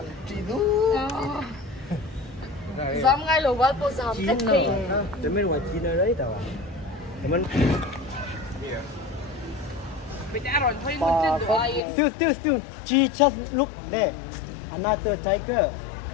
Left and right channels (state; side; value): drops out; right; at 11.8 s